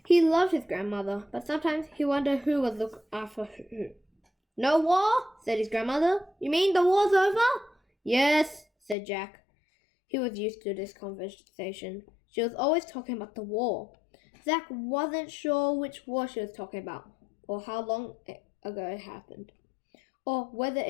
He loved his grandmother, but sometimes he wondered who was looking after who. "No war?" said his grandmother. "You mean the war's over?" "Yes," said Jack. He was used to this conversation. She was always talking about the war. Zach wasn't sure which war she was talking about, or how long ago it happened, or whether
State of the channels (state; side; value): drops out; right; at 9.0 s